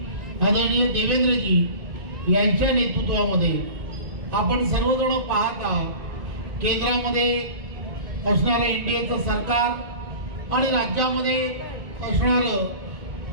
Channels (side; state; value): left; late; 2.5 ms